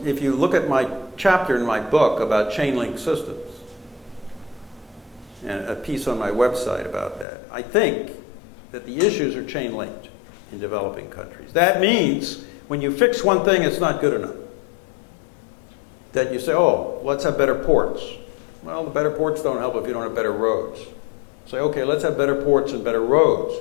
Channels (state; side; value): drops out; right; at 7.2 s